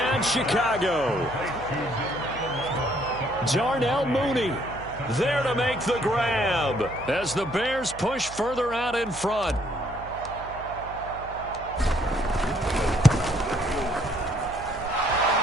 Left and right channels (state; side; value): noise; right; hum, 15 dB below the sound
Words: Chicago. Darnell Mooney there to make the grab as the Bears push further out in front.